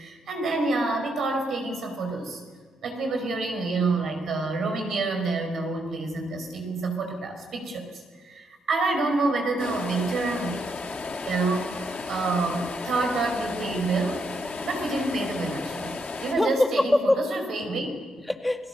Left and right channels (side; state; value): both; normal; correlation 0.79